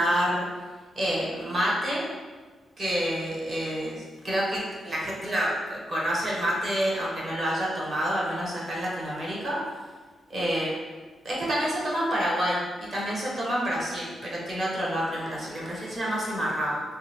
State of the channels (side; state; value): both; normal; correlation 0.84